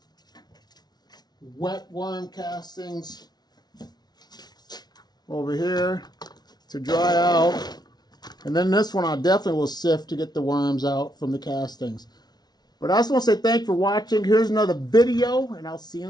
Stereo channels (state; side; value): late; right; 0.19 ms